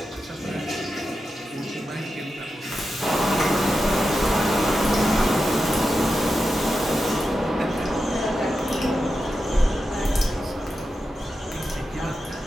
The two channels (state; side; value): normal; both; correlation 0.90